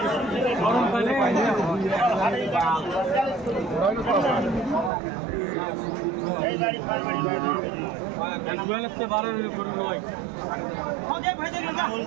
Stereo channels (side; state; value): left; drops out; at 4.9 s